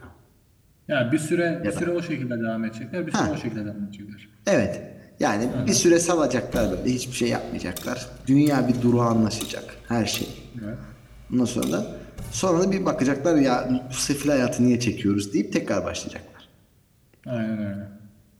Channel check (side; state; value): both; identical; correlation 1.00